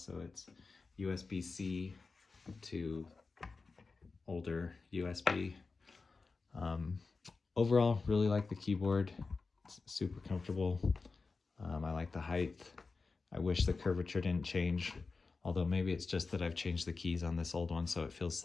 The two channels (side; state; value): right; quieter; 4.2 dB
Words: it's USB-C to older USB. Overall, really like the keyboard. It's super comfortable. I like the height. I wish the curvature didn't change, although maybe it's just that I've changed the keys on this old one, so it feels